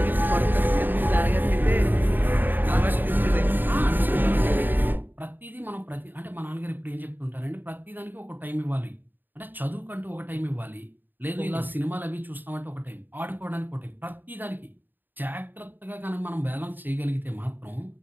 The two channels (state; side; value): late; left; 0.091 ms